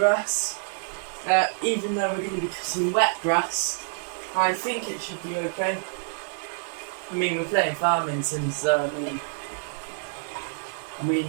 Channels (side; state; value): left; silent; 60 dB below the other